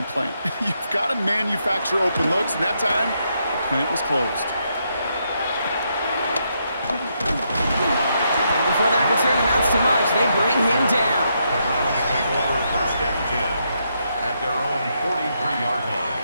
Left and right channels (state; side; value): inverted; both; correlation -0.79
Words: plant. You've got to manufacture open looks, and that time, the plant was closed. And before that return amounts to much, they bring him down. The Browns take over 1st and 10 at their own 43-yard line.